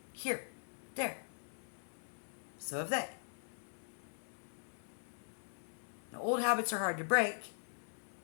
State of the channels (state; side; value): silent; right; digital silence